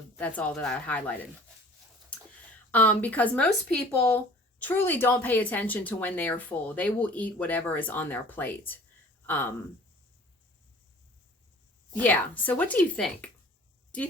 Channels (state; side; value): normal; both; correlation 0.48